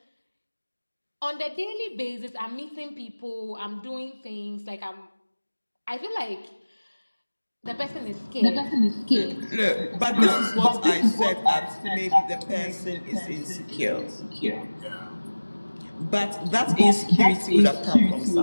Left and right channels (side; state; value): both; inverted; correlation -1.00